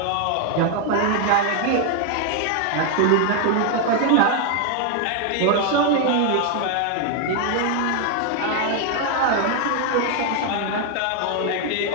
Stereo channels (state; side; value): different; both; correlation 0.01